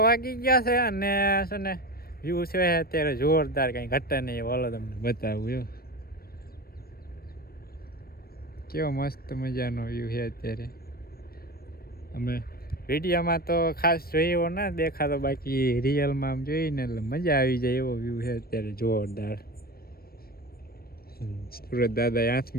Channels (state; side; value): late; right; 0.44 ms